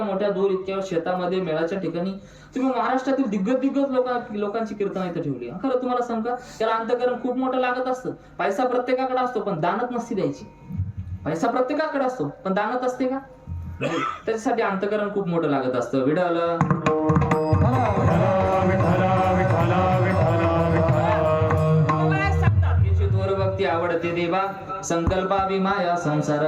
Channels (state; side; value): identical; both; correlation 1.00